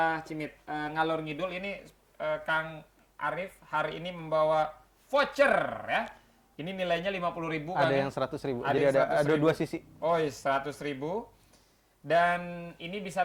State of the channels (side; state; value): both; identical; correlation 1.00